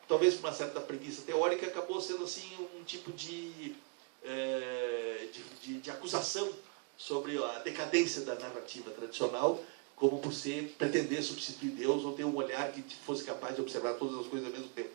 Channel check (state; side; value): quieter; left; 32.1 dB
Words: talvez por uma certa preguiça teórica, acabou sendo assim um tipo de acusação sobre a decadência da narrativa tradicional, como por pretender substituir Deus ou ter um olhar que fosse capaz de observar todas as coisas ao mesmo tempo.